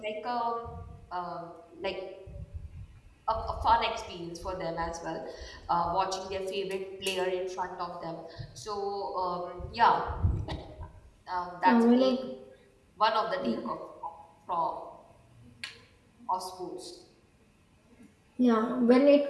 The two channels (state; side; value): identical; both; correlation 1.00